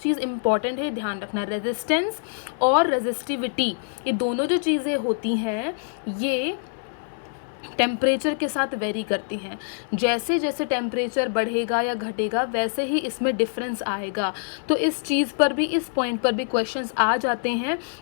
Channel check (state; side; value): silent; right; digital silence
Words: इंपॉर्टेंट है, ध्यान रखना, रेजिस्टेंस और रेजिस्टिविटी ये दोनों जो चीज़ें होती हैं ये टेम्परेचर के साथ वेरी करती हैं। जैसे जैसे टेम्परेचर बढ़ेगा या घटेगा वैसे ही इसमें डिफरेंस आएगा। तो इस चीज़ पर भी, इस पॉइंट पर भी क्वेश्चंस आ जाते हैं